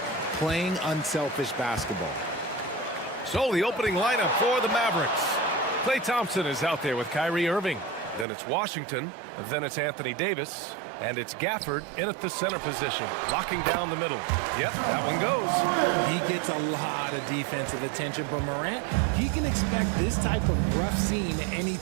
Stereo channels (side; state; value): left; drops out; at 8.2 s